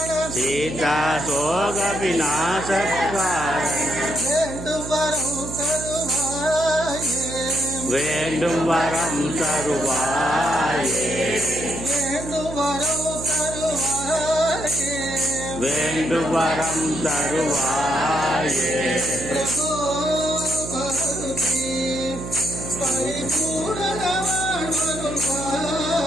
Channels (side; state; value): right; noise; hum, 9 dB below the sound